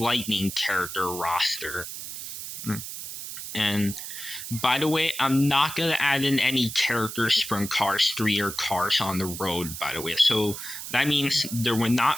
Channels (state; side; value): noise; right; hiss, 8 dB below the sound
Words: character roster. And by the way, I'm not going to add in any characters from Cars 3 or Cars on the Road, by the way. So that means there will